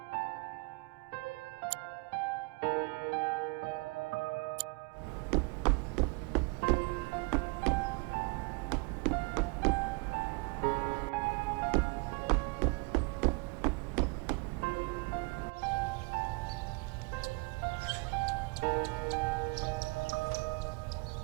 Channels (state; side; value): quieter; left; 29.7 dB